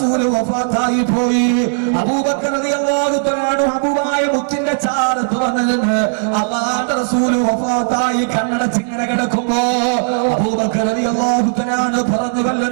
വഫാത്തായി പോയി. അബൂബക്കർ റളിയല്ലാഹു തആല ഹബീബായ മുത്തിന്റെ ചാരത്ത് വന്നിരുന്ന് അല്ലാഹുവിന്റെ റസൂൽ വഫാത്തായി കണ്ണടച്ച് ഇങ്ങനെ കിടക്കുമ്പോ അബൂബക്കർ റളിയല്ലാഹു തആല പറഞ്ഞു, വല്ല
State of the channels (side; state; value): left; silent; digital silence